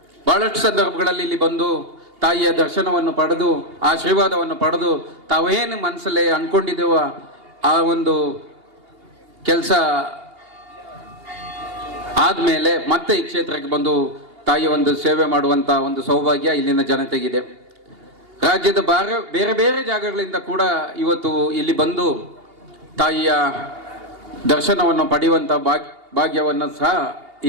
ಬಹಳಷ್ಟು ಸಂದರ್ಭಗಳಲ್ಲಿ ಇಲ್ಲಿ ಬಂದು ತಾಯಿಯ ದರ್ಶನವನ್ನು ಪಡೆದು ಆಶೀರ್ವಾದವನ್ನು ಪಡೆದು ತಾವೇನು ಮನಸ್ಸಲ್ಲೇ ಅಂದ್ಕೊಂಡಿದ್ದೇವ ಆ ಒಂದು ಕೆಲಸ ಆದಮೇಲೆ ಮತ್ತೆ ಈ ಕ್ಷೇತ್ರಕ್ಕೆ ಬಂದು ತಾಯಿಯ ಒಂದು ಸೇವೆ ಮಾಡುವಂಥ ಒಂದು ಸೌಭಾಗ್ಯ ಇಲ್ಲಿನ ಜನತೆಗಿದೆ. ರಾಜ್ಯದ ಬೇರೆ ಬೇರೆ ಜಾಗಗಳಿಂದ ಕೂಡ ಇವತ್ತು ಇಲ್ಲಿ ಬಂದು ತಾಯಿಯ ದರ್ಶನವನ್ನು ಪಡೆಯುವಂಥ ಭಾಗ್ಯವನ್ನು ಸಹ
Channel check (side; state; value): left; late; 2.8 ms